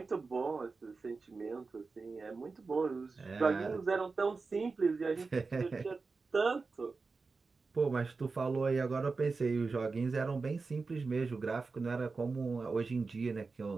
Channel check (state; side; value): quieter; left; 4.2 dB